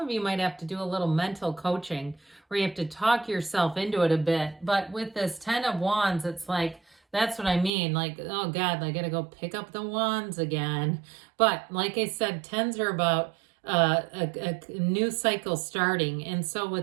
you might have to do a little mental coaching where you have to talk yourself into it a bit. But with this 10 of Wands, it's like, that's what I mean. Like, oh God, I got to go pick up the wands again. But like I said, 10s are about a new cycle starting. And so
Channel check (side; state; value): left; drops out; at 7.7 s